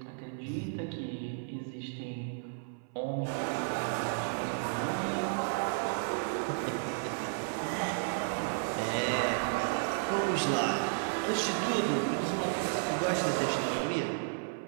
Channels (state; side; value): silent; left; 56 dB below the other